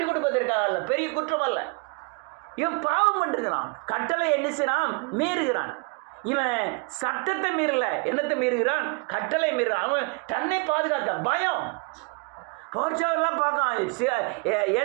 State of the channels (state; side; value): quieter; left; 34.4 dB